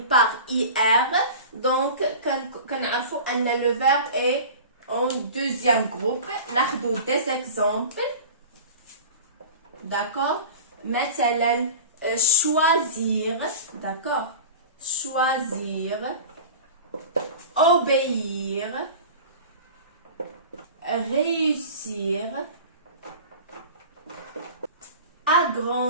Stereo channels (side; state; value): both; inverted; correlation -0.36